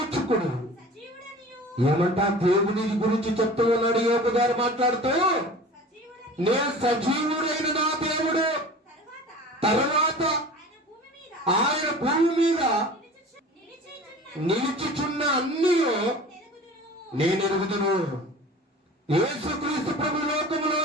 ఏమంటా దేవుని గురించి చెప్తూ ఉన్నాడు యోబు గారు మాట్లాడుతూ, నేను సజీవుడైన నా దేవుడు, తర్వాత ఆయన భూమి మీద నిలిచిచున్న అన్నీ నేను ఎరుగుదును. యేసుక్రీస్తు ప్రభు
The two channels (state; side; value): normal; both; correlation 0.40